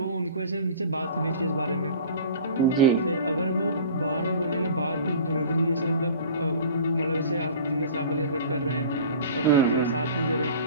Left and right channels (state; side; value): inverted; both; correlation -0.42